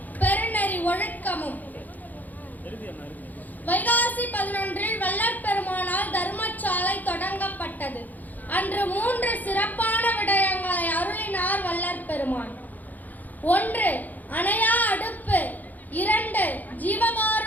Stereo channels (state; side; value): late; right; 0.082 ms